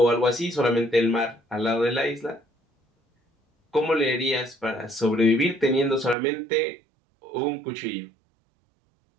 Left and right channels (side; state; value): left; drops out; at 6.2 s